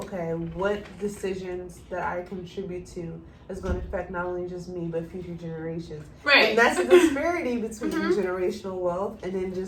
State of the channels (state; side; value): identical; both; correlation 1.00